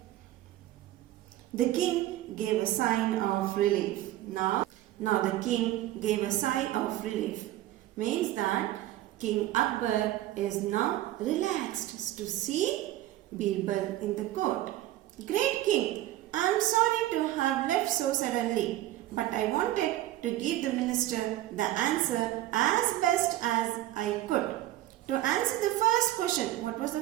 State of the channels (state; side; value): quieter; left; 14.8 dB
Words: The king gave a sign of relief. Now the king gave a sigh of relief. Means that King Akbar is now relaxed to see Birbal in the court. Great king, I am sorry to have left so suddenly, but I wanted to give the minister the answer as best as I could. To answer the first question, what was the